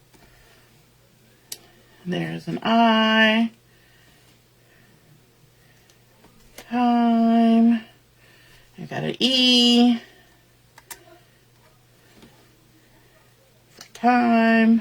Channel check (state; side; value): identical; both; correlation 1.00